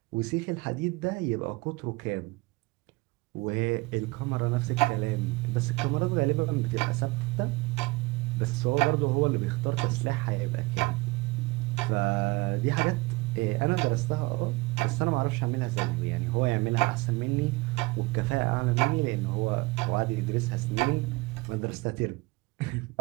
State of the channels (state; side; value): quieter; left; 23.1 dB